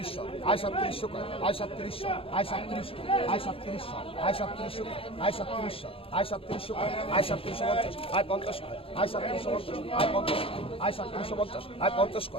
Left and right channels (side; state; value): right; late; 0.27 ms